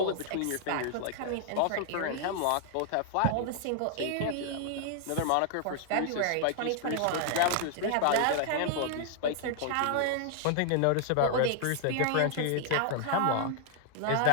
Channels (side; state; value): both; different; correlation 0.00